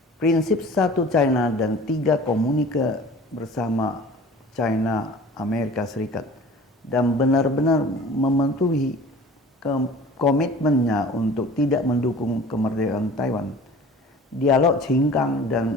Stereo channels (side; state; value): both; normal; correlation 0.44